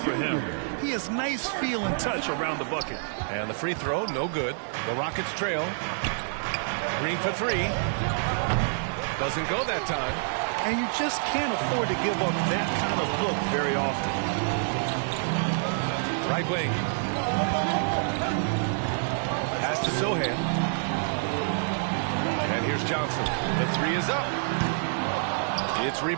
him. He has nice feel and touch around the bucket. And the free throw, no good. The Rockets trail. Green for 3. Doesn't go that time. And you just can't afford to give up that kind of look very often. Right wing. Pass to Sohan. And here's Johnson. The 3 is up. It's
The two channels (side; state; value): left; silent; 60 dB below the other